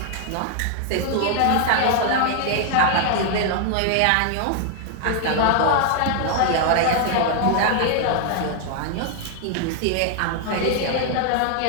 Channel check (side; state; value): both; different; correlation 0.00